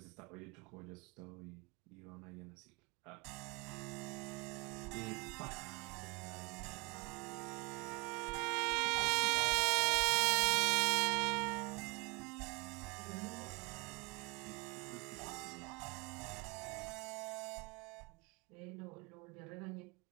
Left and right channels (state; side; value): quieter; left; 28.2 dB